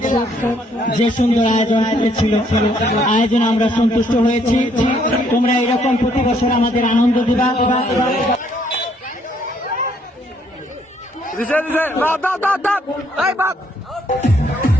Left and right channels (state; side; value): normal; both; correlation 0.68